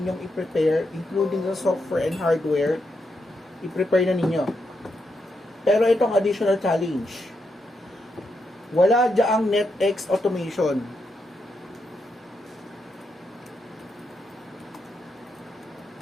i-prepare, including the software and hardware, i-prepare na ninyo. Pero itong additional challenge, wala diyaang NetX automation.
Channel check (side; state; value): both; normal; correlation 0.83